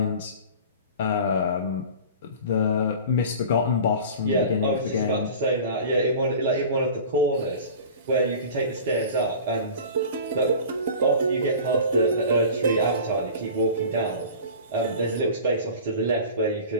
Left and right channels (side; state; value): both; inverted; correlation -0.39